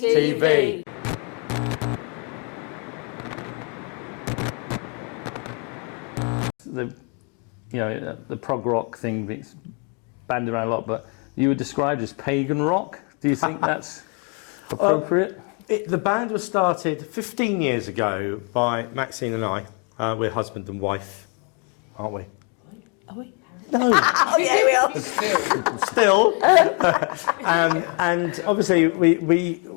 The prog rock thing gets banded around a lot, but you were described as pagan rock. Do you think that's appropriate? The band was started 15 years ago by Maxine and I. We're husband and wife, aren't we? Are we? No. Oh, yeah, we are. Still. And obviously we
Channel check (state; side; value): quieter; right; 37.0 dB